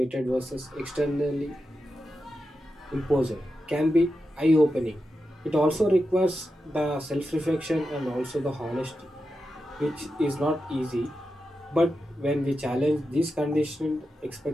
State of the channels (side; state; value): both; normal; correlation 0.89